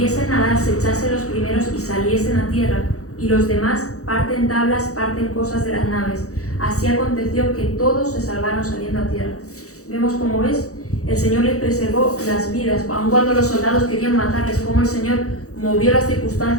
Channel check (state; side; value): late; right; 0.65 ms